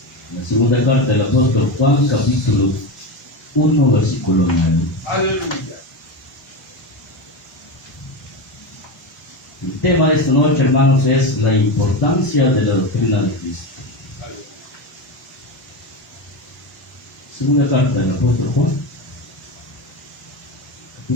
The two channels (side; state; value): both; normal; correlation 0.18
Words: La segunda carta del apóstol Juan, capítulo 1, versículo 9. Aleluya. El tema de esta noche, hermanos, es la importancia de la doctrina de Cristo. Segunda carta del apóstol Juan,